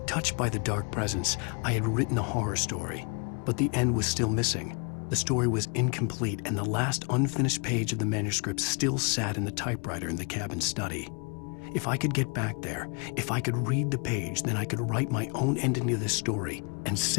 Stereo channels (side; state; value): right; quieter; 35.5 dB